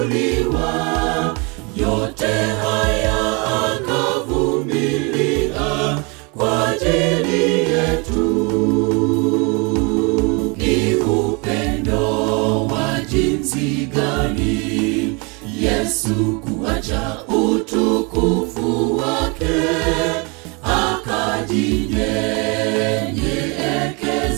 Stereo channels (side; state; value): left; quieter; 30.9 dB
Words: Yote haya akavumilia kwa ajili yetu. Ni upendo wa jinsi gani Yesu kuacha utukufu wake,